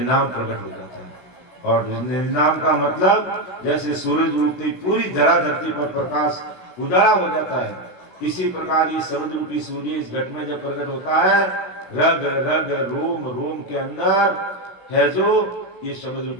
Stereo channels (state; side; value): late; right; 17 ms